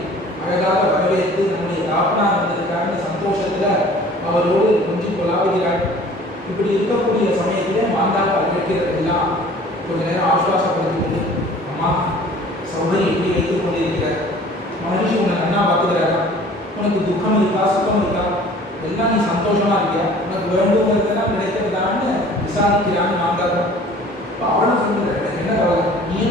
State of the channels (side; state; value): both; normal; correlation 0.48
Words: அழகாக வரவேற்று நம்முடைய தாப்பனார் வந்திருக்காருன்னு சந்தோஷத்துல அவரோடு கொஞ்சம் கொலாவுகிறாள். இப்படி இருக்கக்கூடிய சமயத்திலே மாந்தாக்கா கேட்கிறதெல்லாம் கொஞ்ச நேரம் ஆசுவாசப்படுத்திக் கொண்டு, அம்மா சௌகரி இப்படி வைத்துக் கொண்டிருக்கிறார், மகரிஷி உன்னை நன்னா பார்த்துக்கிறாரா, உனக்கு துக்கம் இருக்கா சுத்தம் இருக்கா, எல்லாம் நீ சந்தோஷமா இருக்கியா, உனக்கு வேண்டுங்கிறதெல்லாம் கிடைக்கிறதான்னு விசாரிக்கிறான்னு மாந்தாக்கா. இப்போ அவளும் சொல்லுற, எனக்கு என்ன கவலை,